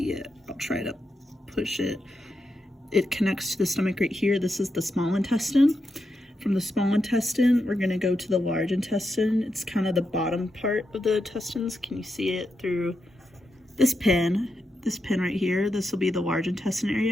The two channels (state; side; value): normal; both; correlation 0.86